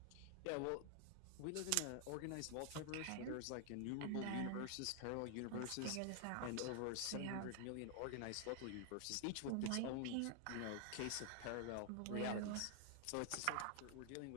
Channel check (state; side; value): different; both; correlation 0.00